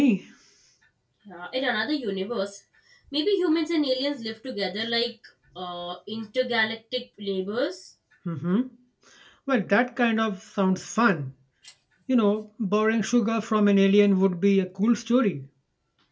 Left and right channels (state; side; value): identical; both; correlation 1.00